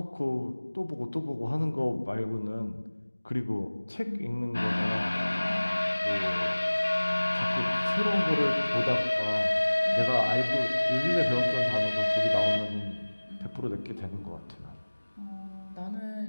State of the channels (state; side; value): inverted; both; correlation -1.00